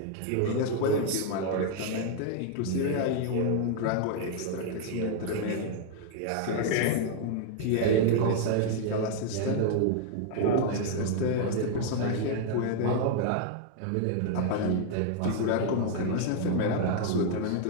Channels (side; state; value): both; different; correlation 0.00